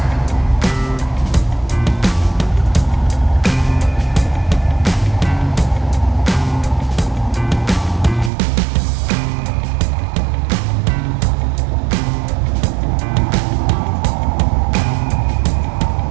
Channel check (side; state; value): left; drops out; at 8.3 s